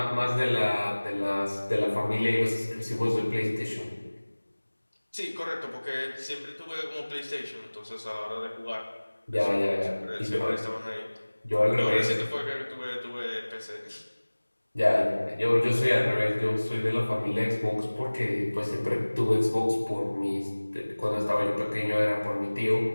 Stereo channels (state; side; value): inverted; both; correlation -1.00